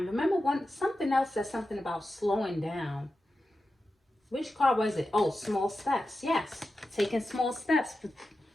Remember, something else says something about slowing down. Which card was it? Oh, small steps. Yes, taking small steps.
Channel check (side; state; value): both; normal; correlation 0.92